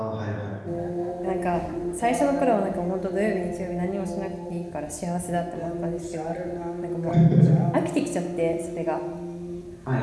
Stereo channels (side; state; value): both; identical; correlation 1.00